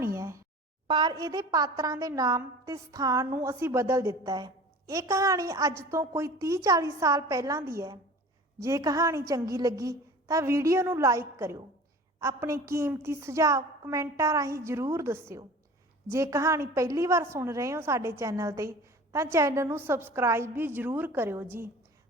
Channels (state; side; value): normal; both; correlation 0.41